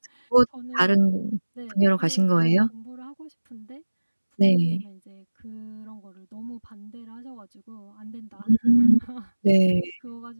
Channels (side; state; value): both; inverted; correlation -1.00